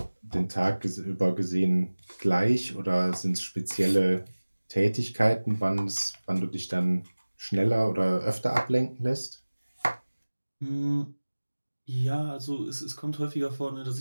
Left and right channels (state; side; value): inverted; both; correlation -1.00